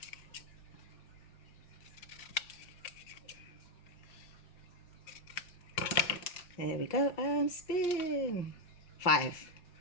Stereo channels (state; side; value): late; right; 5.8 ms